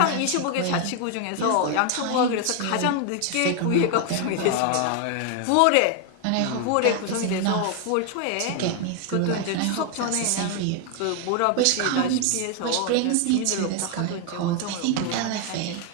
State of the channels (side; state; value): both; different; correlation 0.01